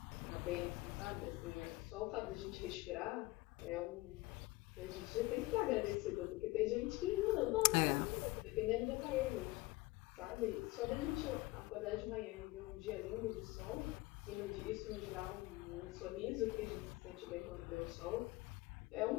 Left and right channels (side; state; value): right; quieter; 20.5 dB